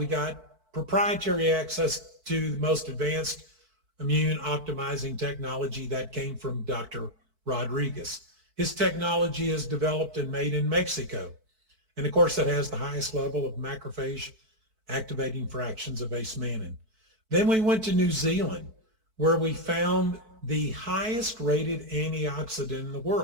got proprietary access to the most advanced immune optimizing technology that came from Dr. Rodriguez. His technology is developed and made in Mexico. And of course, it has the highest level of macrophage activating fractions of Ace Mannan. Then we went to New Zealand, where we found the highest rated antioxidant in the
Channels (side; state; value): left; late; 4.5 ms